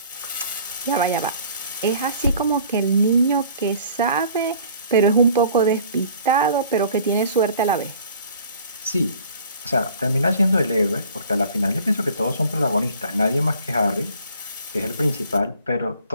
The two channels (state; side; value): inverted; both; correlation -0.51